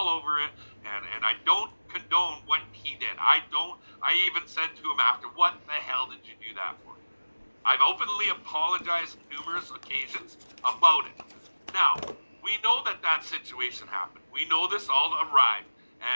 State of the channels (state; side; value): inverted; both; correlation -1.00